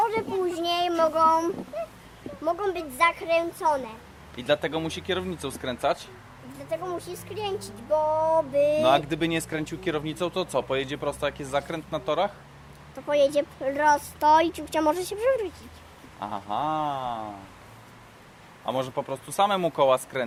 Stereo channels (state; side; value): identical; both; correlation 1.00